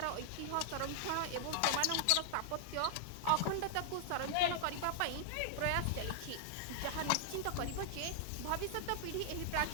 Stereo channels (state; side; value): different; both; correlation -0.01